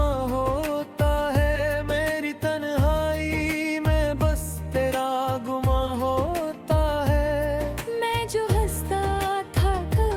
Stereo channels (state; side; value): identical; both; correlation 1.00